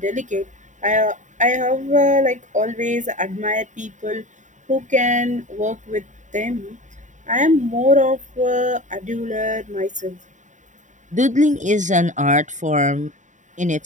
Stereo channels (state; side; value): late; left; 0.36 ms